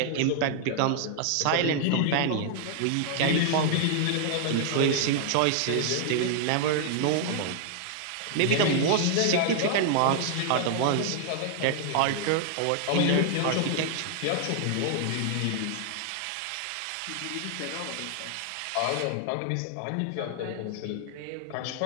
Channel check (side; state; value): both; different; correlation 0.00